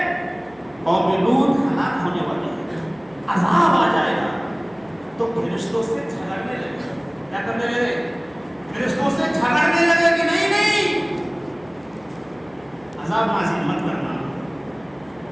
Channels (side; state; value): left; noise; hum, 28 dB below the sound